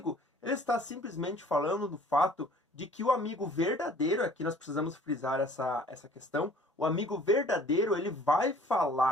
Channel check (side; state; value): both; normal; correlation 0.52